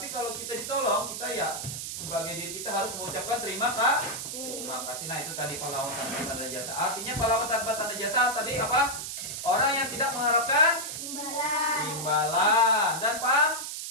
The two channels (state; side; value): noise; right; hiss, 6 dB below the sound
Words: kalau kita ditolong, kita ya sebagai diri kita harus mengucapkan terima kasih. Nah, itu tadi pahlawan tanpa tanda jasa. Artinya pahlawan tanpa tanda jasa tadi apa? Orang yang tidak mengharapkan imbalan dan